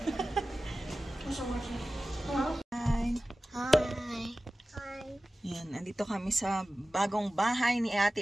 Hi. Hi. Hi. Yan, andito kami sa bagong bahay ni Ate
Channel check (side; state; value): both; normal; correlation 0.96